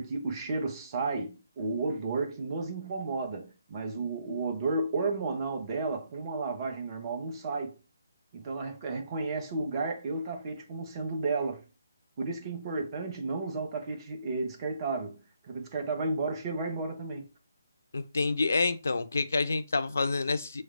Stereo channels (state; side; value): inverted; both; correlation -0.74